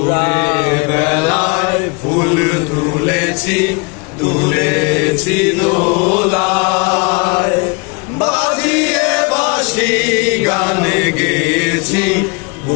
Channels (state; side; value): quieter; right; 30.5 dB